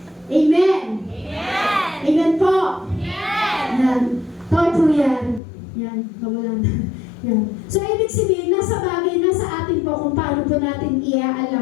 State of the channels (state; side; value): drops out; right; at 5.4 s